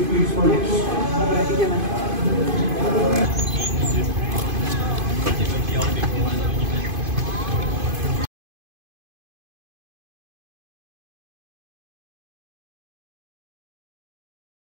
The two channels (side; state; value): left; late; 2.5 ms